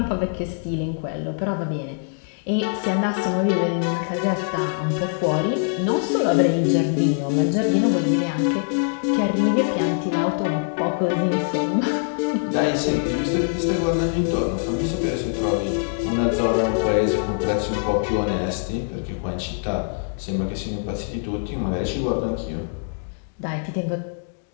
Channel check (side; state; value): right; silent; digital silence